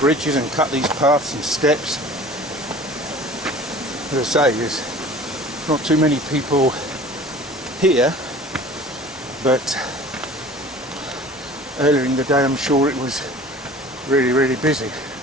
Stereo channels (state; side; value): normal; both; correlation 0.44